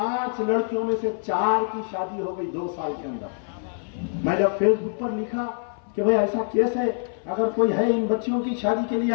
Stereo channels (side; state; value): right; silent; 58 dB below the other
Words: लड़कियों में से 4 की शादी हो गई 2 साल के अंदर। मैं जब फेसबुक पर लिखा कि भाई ऐसा केस है, अगर कोई है इन बच्चियों की शादी के लिए